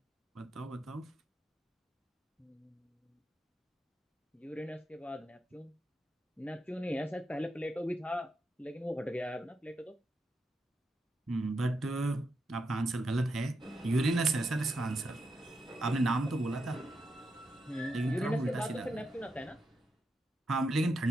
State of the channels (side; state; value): both; normal; correlation 0.84